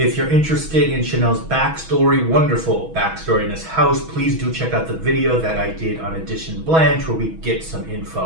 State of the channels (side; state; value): left; late; 6.2 ms